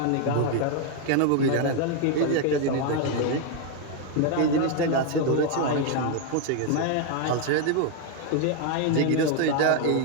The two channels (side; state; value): both; different; correlation 0.01